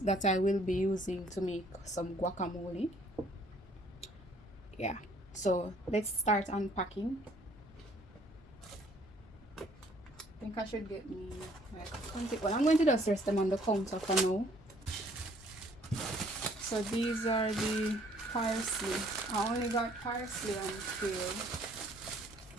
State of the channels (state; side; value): normal; both; correlation 0.60